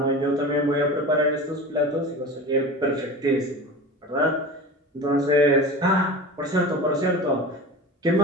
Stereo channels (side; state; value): both; normal; correlation 0.32